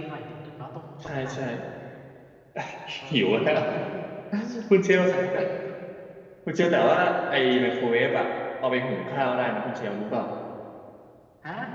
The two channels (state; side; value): identical; both; correlation 1.00